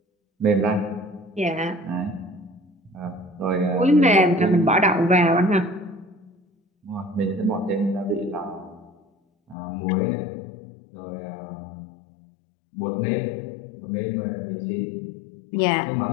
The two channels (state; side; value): drops out; right; at 9.6 s